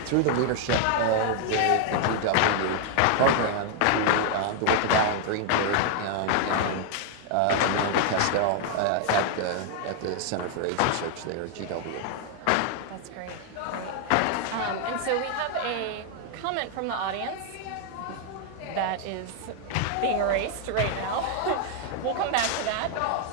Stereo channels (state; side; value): different; both; correlation 0.00